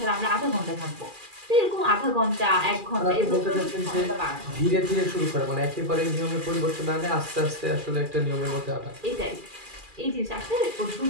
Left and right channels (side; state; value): left; late; 2.4 ms